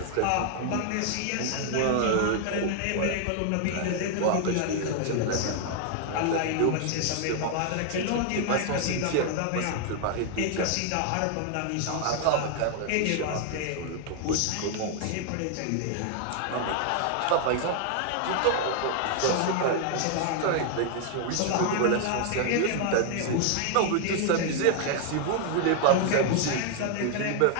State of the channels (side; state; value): both; different; correlation 0.00